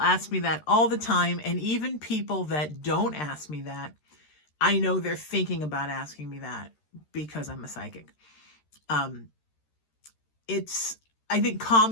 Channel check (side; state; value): right; late; 13 ms